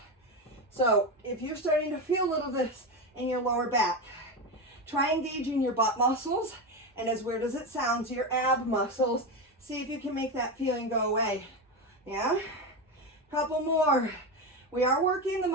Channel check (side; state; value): both; normal; correlation 0.16